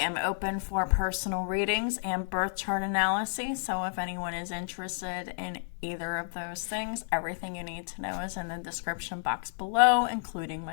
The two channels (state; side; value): silent; right; digital silence